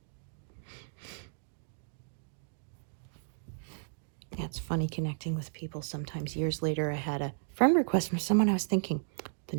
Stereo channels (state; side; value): silent; left; digital silence